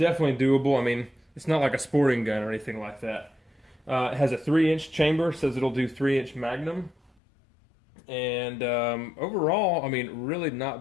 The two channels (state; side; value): drops out; right; at 7.1 s